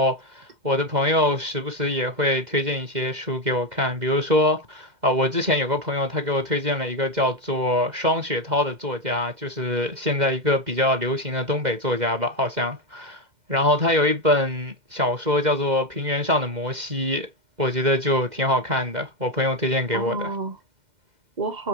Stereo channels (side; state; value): left; late; 2.1 ms